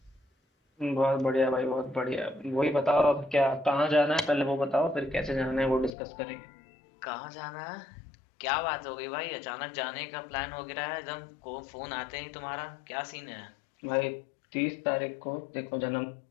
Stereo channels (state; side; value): drops out; right; at 5.9 s